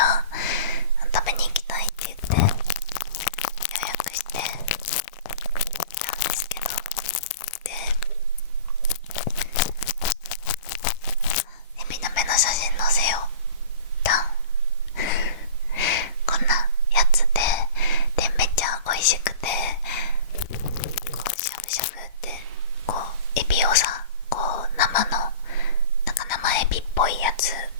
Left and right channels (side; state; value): both; inverted; correlation -0.39